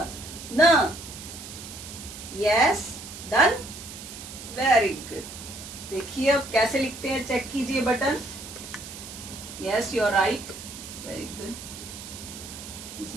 न. Yes, done. Very good. देखिए अब कैसे लिखते हैं, चेक कीजिए. Button. Yes, you are right. Very good. इसी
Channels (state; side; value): noise; right; hiss, 12 dB below the sound